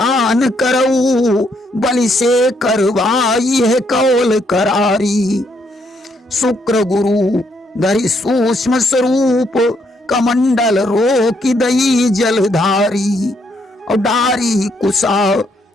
करऊ बलि से करवाई है कौल करारी। शुक्र गुरु धरि सूक्ष्म स्वरूप कमंडल रोकी दई जलधारी, और डारी कुशा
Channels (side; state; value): both; normal; correlation 0.73